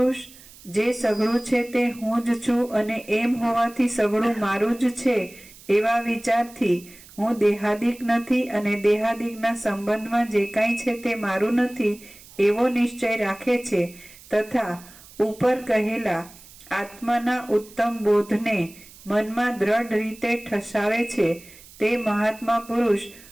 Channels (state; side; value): noise; right; hiss, 21 dB below the sound